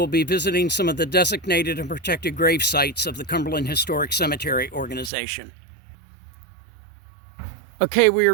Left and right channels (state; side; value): drops out; left; at 5.1 s